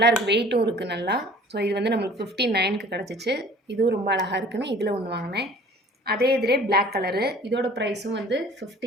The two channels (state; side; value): normal; both; correlation 0.49